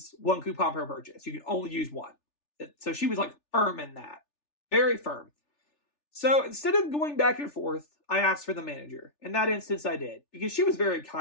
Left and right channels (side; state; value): right; late; 3.4 ms